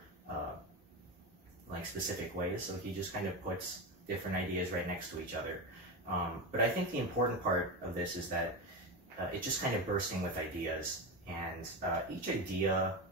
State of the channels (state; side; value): normal; both; correlation 0.18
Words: like specific ways. So he just kind of puts different ideas right next to each other. But I think the important part of this is that it's just kind of bursting with ideas, and each idea